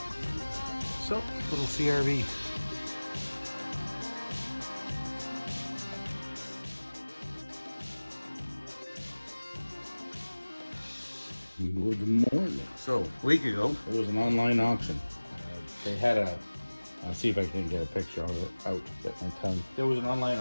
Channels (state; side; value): inverted; both; correlation -1.00